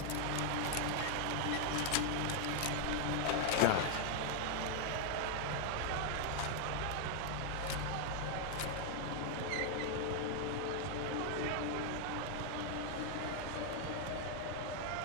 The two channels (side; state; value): both; different; correlation 0.00